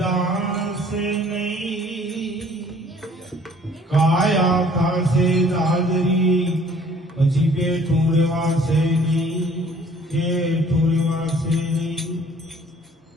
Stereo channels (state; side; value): normal; both; correlation 0.56